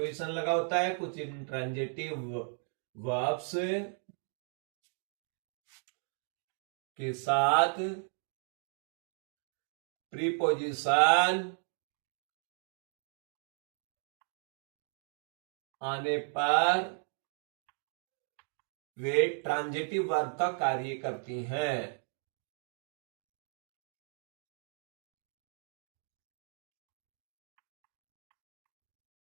लगा होता है, कुछ इनट्रांजिटिव वर्ब्स के साथ प्रीपोजिशन आने पर वे ट्रांजिटिव वर्ब का कार्य करती हैं।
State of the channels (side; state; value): left; silent; 54 dB below the other